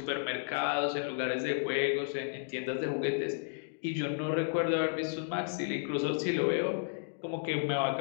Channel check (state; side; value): silent; right; digital silence